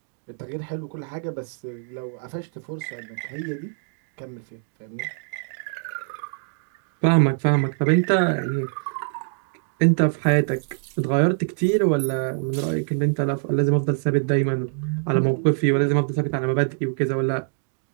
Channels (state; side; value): silent; left; 62 dB below the other